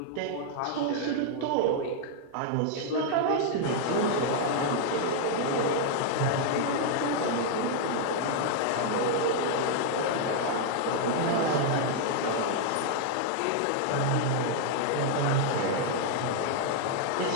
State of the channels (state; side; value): different; both; correlation 0.00